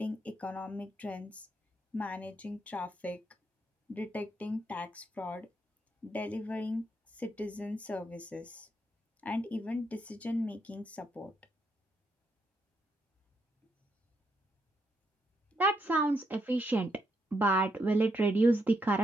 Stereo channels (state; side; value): normal; both; correlation 0.78